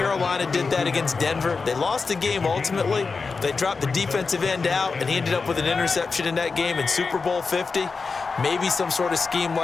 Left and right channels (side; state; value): right; quieter; 4.6 dB